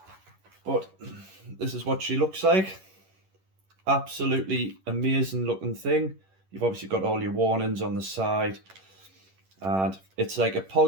But this is what she looks like. Absolutely amazing looking thing. You've obviously got all your warnings on the side, and it's like a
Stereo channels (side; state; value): left; late; 11 ms